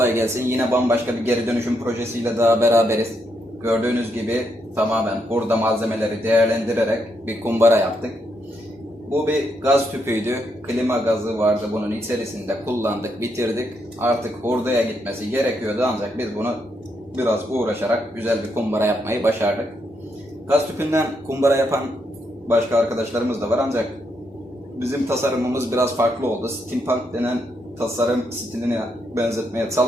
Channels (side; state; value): both; normal; correlation 0.79